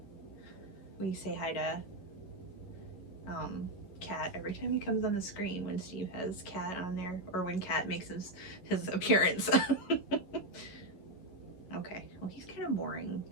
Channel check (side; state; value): right; late; 11 ms